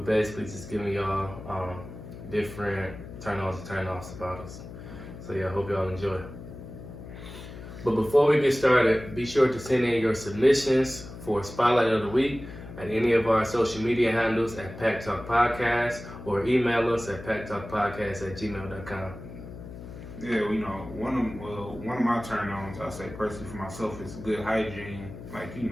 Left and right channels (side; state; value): left; noise; hum, 13 dB below the sound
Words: basically just giving y'all different turn ons and turn offs about us. So yeah, I hope y'all enjoy. But before we get started, be sure to send in your submissions for Spotlight of the Week at any of our social media handles at PackTalkPodcast or email us at PackTalkPodcast@gmail.com. Yeah, you know, one of my turn-ons, I say personally for myself, is good hygiene. Like, you